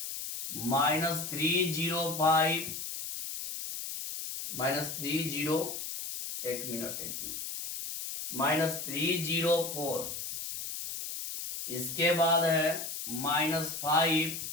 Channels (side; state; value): left; noise; hiss, 6 dB below the sound